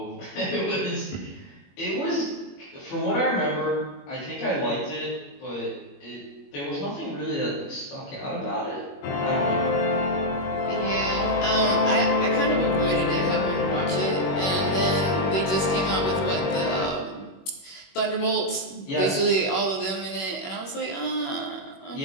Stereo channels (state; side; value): late; right; 21 ms